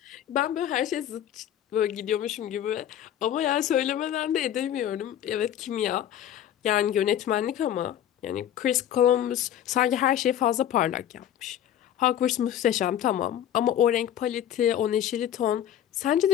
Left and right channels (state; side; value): quieter; right; 10.9 dB